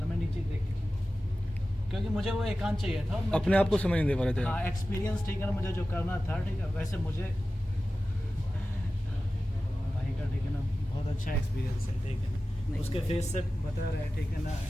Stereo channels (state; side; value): normal; both; correlation 0.95